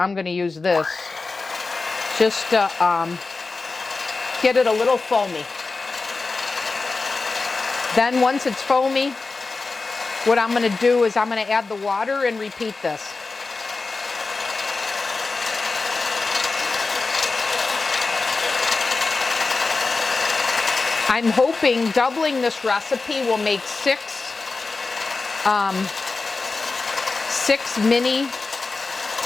going to use this just to get it a little foamy. Then once it's foamy, what I'm going to do is I'm going to add the water and repeat this. I'm hoping doubling this recipe will make 6 mini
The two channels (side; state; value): right; quieter; 3.9 dB